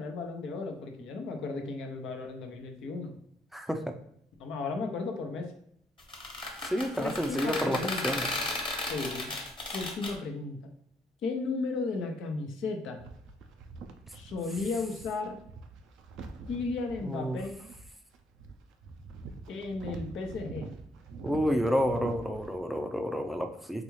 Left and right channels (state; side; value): normal; both; correlation 0.73